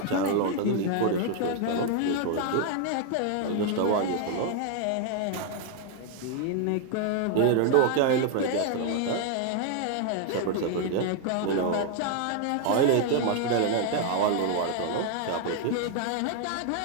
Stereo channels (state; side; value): different; both; correlation 0.00